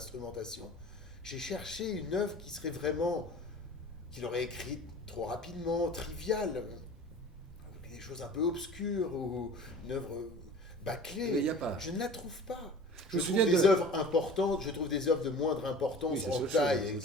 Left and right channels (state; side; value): normal; both; correlation 0.42